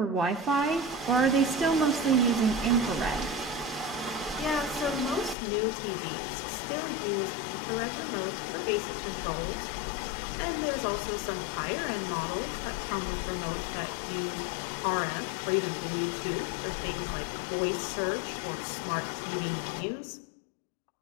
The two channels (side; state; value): right; drops out; at 5.4 s